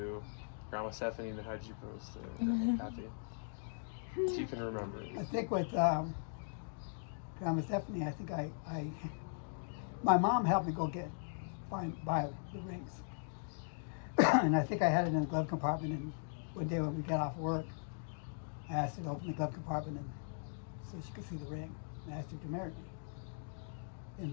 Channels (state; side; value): silent; right; digital silence